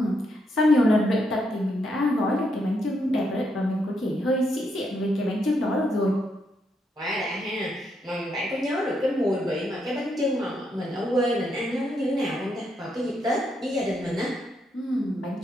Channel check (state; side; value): normal; both; correlation 0.78